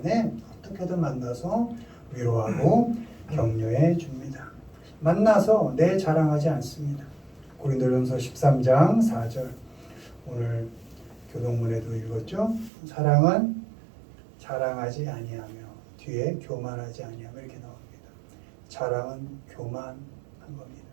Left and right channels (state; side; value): drops out; left; at 12.7 s